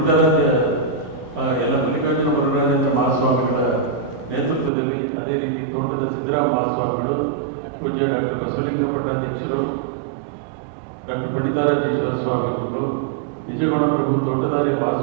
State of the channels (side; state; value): left; drops out; at 4.7 s